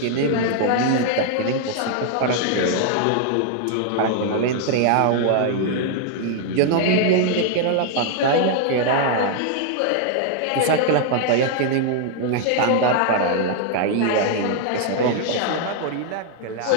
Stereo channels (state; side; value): different; both; correlation 0.00